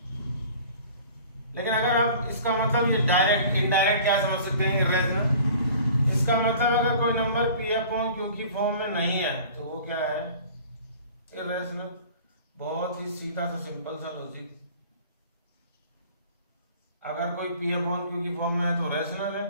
लेकिन अगर आप इसका मतलब ये डायरेक्ट इनडायरेक्ट क्या समझ सकते हैं? इर्रेशनल. इसका मतलब अगर कोई नंबर P/Q की फॉर्म में नहीं है तो वो क्या है? इर्रेशनल. बहुत ही सीधा सा सिंपल सा लॉजिक. अगर कोई P/Q की फॉर्म में है तो रैशनल है,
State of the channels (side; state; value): both; inverted; correlation -0.46